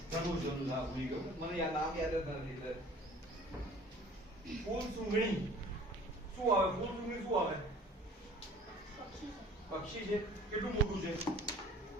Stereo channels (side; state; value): both; normal; correlation 0.48